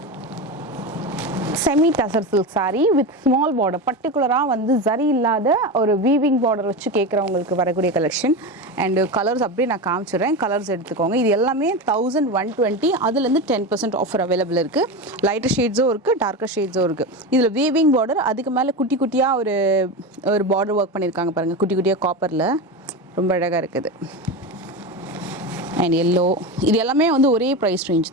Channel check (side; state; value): both; normal; correlation 0.21